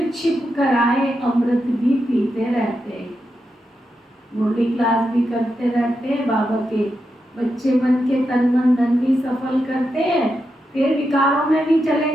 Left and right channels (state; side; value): normal; both; correlation 0.86